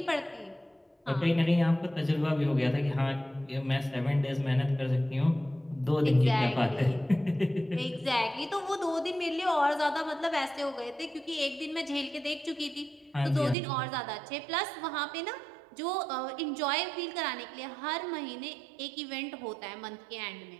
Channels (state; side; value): drops out; left; at 13.6 s